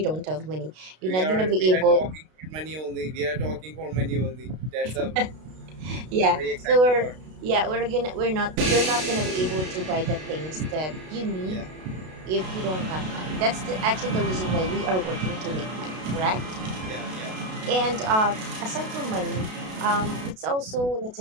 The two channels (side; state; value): left; late; 32 ms